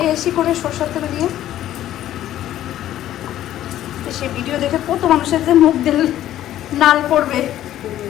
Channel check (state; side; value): quieter; right; 12.7 dB